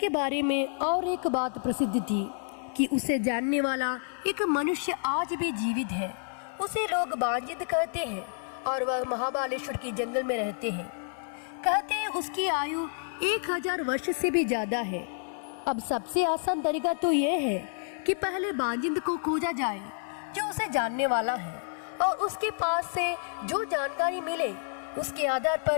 बारे में और एक बात प्रसिद्ध थी कि उसे जानने वाला एक मनुष्य आज भी जीवित है। उसे लोग बांजिद कहते हैं और वह महाबालेश्वर की जंगल में रहते हैं। कहते हैं उसकी आयु 1000 वर्ष से भी ज्यादा है। अब सबसे आसान तरीका तो यह है कि पहले बांजिद को खोजा जाए जो उसे जानने वाला है, और उसके पास से जो जानकारी मिले उसके आधार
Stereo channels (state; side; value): silent; right; digital silence